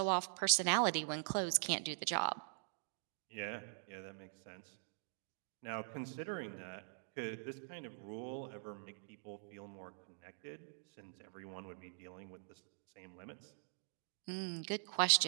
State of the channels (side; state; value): left; silent; digital silence